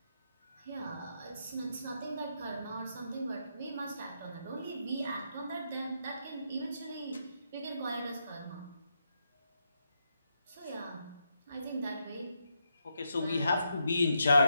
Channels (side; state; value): both; inverted; correlation -0.82